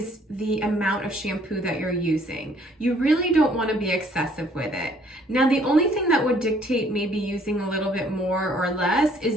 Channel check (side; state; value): both; normal; correlation 0.61